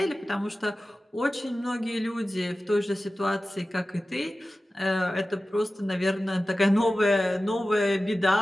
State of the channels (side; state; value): both; normal; correlation 0.95